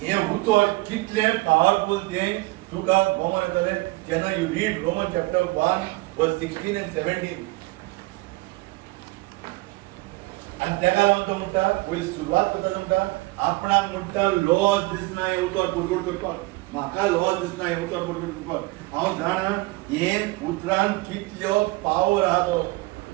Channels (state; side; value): quieter; left; 22.7 dB